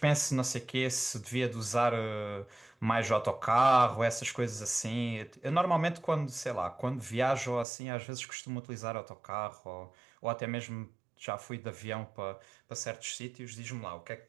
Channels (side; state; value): left; drops out; at 7.7 s